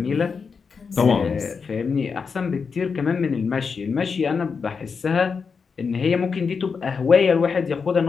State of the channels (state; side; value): quieter; right; 5.5 dB